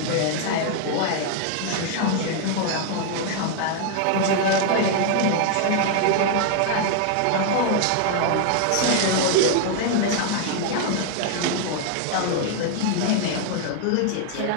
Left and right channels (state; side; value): different; both; correlation 0.00